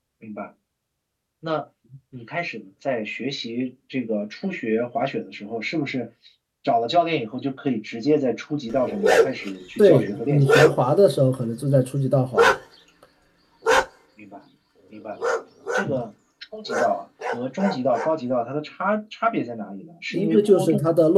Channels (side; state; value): both; identical; correlation 1.00